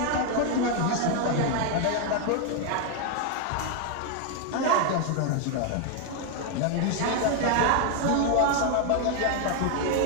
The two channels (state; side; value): different; both; correlation 0.01